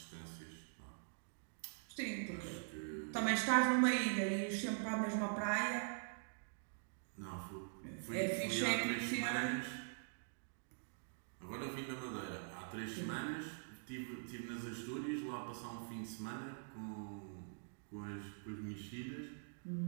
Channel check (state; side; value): silent; left; digital silence